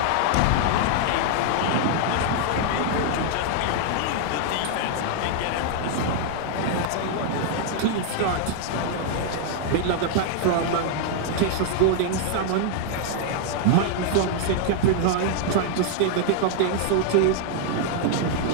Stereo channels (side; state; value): both; different; correlation 0.00